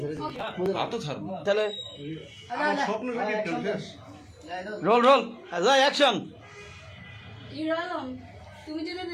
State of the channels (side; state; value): both; identical; correlation 1.00